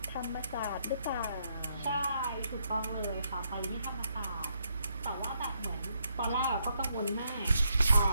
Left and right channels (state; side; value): inverted; both; correlation -0.76